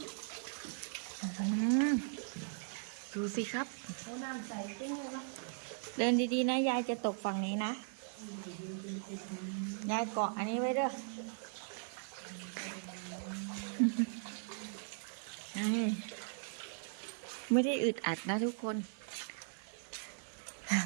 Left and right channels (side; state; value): left; silent; 52 dB below the other